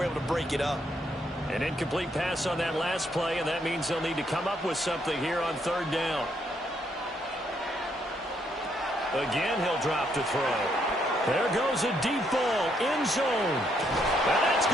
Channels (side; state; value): both; normal; correlation 0.73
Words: able to break it up. An incomplete pass on that last play, and that means they'll need to come up with something here on 3rd down. Again, he'll drop to throw. There goes a deep ball, end zone. And that's